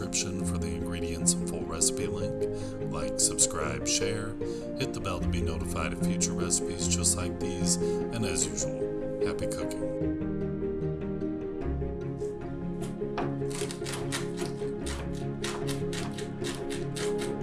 for the ingredients and full recipe link. Like, subscribe, share, hit the bell to be notified of future recipes just like these, and as usual, happy cooking.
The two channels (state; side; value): identical; both; correlation 1.00